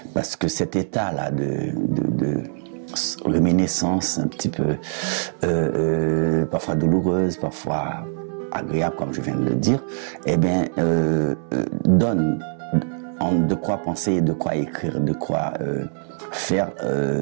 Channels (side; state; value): left; silent; digital silence